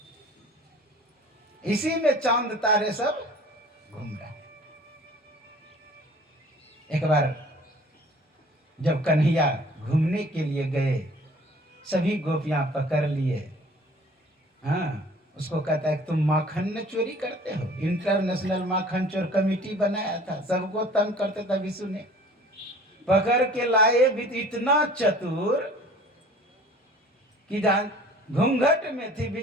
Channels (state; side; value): normal; both; correlation 0.49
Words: इसी में चांद तारे सब घूम रहे हैं। एक बार जब कन्हैया घूमने के लिए गए, सभी गोपियां पकड़ लिए। हाँ, उसको कहता है तुम माखन न चोरी करते हो। इंटरनेशनल माखन चोर कमेटी बनाया था, सबको तंग करते था विष्णु ने। पकड़ के लाए भी तो इतना चतुर कि जान घूंघट में थी,